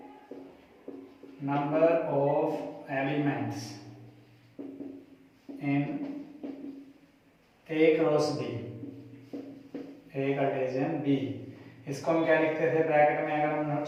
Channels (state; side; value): identical; both; correlation 1.00